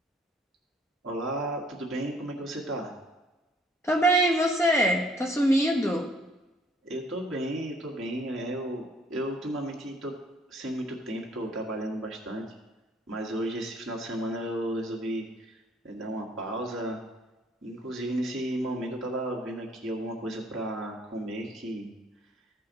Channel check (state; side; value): normal; both; correlation 0.61